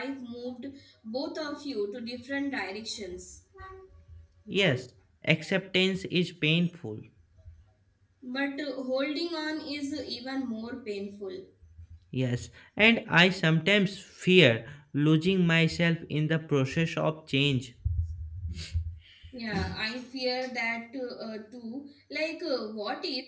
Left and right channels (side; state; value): both; identical; correlation 1.00